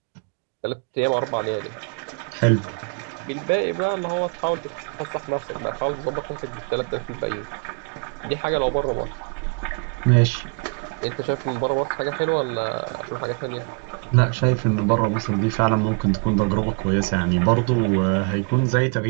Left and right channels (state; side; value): quieter; left; 37.9 dB